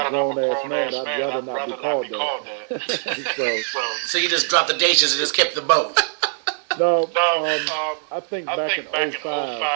a grown-ass man, I'd rather not be called that. So you just dropped the dishes and just kept the boat. No, I think back in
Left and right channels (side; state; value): left; silent; 64 dB below the other